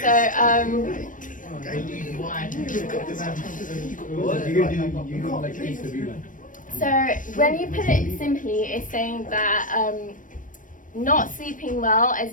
so so when you put it simply, it's saying that not sleeping well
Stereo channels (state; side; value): late; right; 0.38 ms